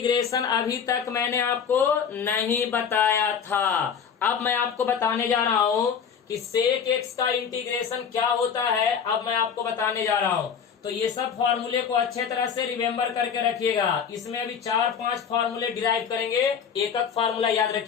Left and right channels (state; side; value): quieter; right; 7.1 dB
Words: अभी तक मैंने आपको नहीं बताया था। अब मैं आपको बताने जा रहा हूं कि सेक एक्स का इंटीग्रेशन क्या होता है। अब मैं आपको बताने जा रहा हूं। तो ये सब फॉर्मूले को अच्छे तरह से रिमेम्बर करके रखिएगा। इसमें अभी 4-5 फॉर्मूले डिराइव करेंगे। एक फॉर्मूला याद